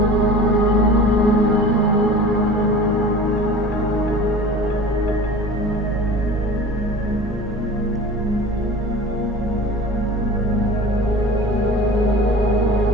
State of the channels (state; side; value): normal; both; correlation 0.39